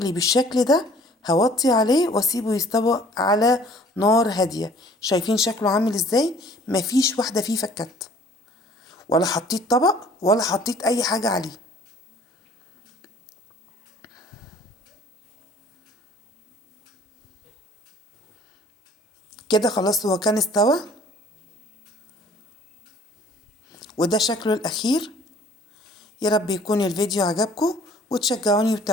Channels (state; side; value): normal; both; correlation 0.53